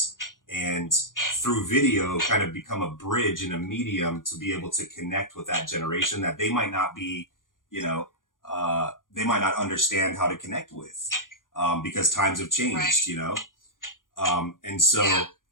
and through video kind of become a bridge and a medium to be able to connect with that generation that they might not be, they might not understand how to connect with, because times have changed, and so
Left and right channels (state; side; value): late; right; 0.89 ms